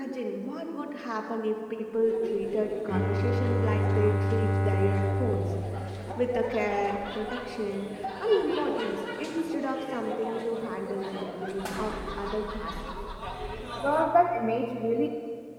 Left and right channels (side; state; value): both; identical; correlation 1.00